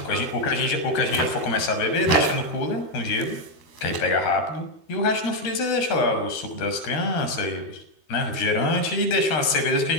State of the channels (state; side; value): late; right; 13 ms